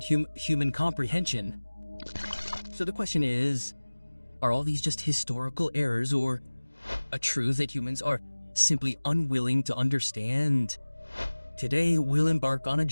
human comprehension. So the question is, are all these just historical errors or a truth that humans are simply unwilling to understand? Today, we'll embark on a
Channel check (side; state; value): both; inverted; correlation -1.00